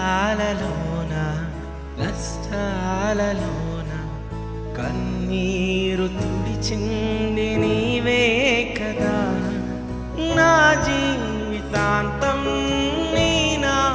నష్టాలలోన కన్నీరు తుడిచింది నీవే కదా. నా జీవితాంతం నీ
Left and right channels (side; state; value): both; identical; correlation 1.00